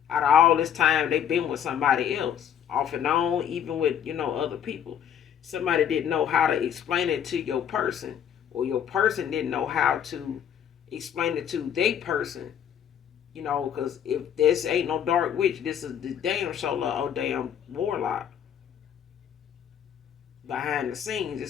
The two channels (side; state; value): right; quieter; 9.0 dB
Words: Out of all this time, they've been with somebody else, off and on, even with, other people. Somebody didn't know how to explain it to your person, or your person didn't know how to explain it to their person, because if this ain't no dark witch, this is the damn shoulder or damn warlock. Behind the scenes,